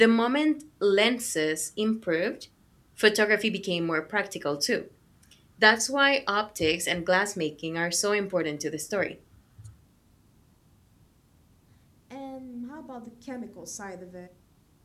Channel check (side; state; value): both; identical; correlation 1.00